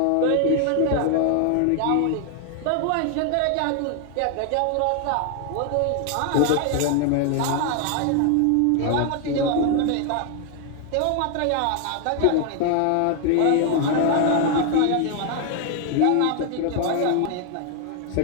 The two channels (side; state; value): both; different; correlation 0.00